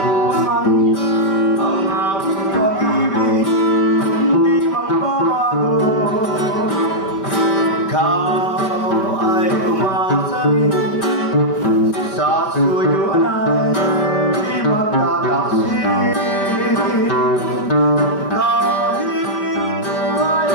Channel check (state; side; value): late; right; 5.1 ms